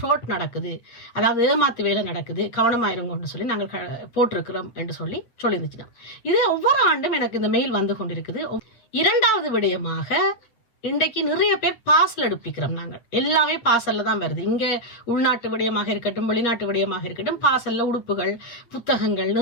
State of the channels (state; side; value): late; right; 8.5 ms